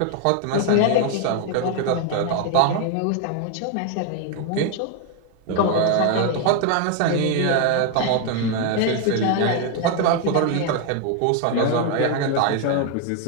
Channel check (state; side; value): different; both; correlation 0.01